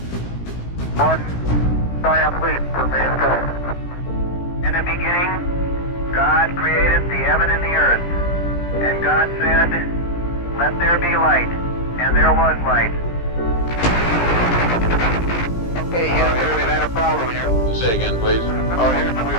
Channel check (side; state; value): right; late; 17 ms